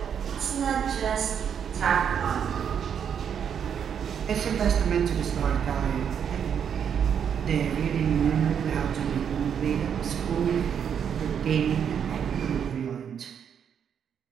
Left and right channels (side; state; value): left; quieter; 8.0 dB